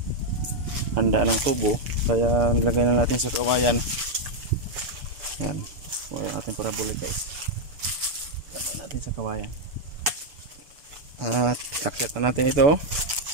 handa ng tubo, kaya nilagay na natin sa kawayan. Yan, yung ating parabolic guys, lagay natin sa kawayan at kakyat na natin ito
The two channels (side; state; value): left; late; 6.9 ms